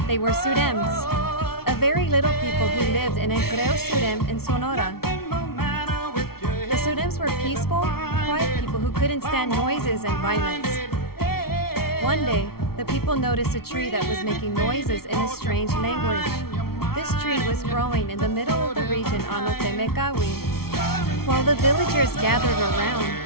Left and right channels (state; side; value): late; right; 0.94 ms